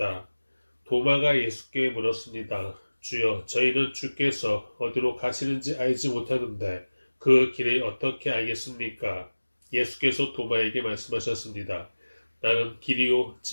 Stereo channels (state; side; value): inverted; both; correlation -1.00